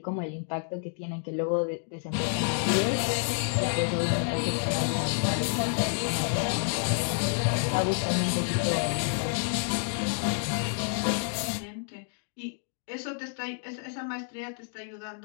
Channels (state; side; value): silent; right; 58 dB below the other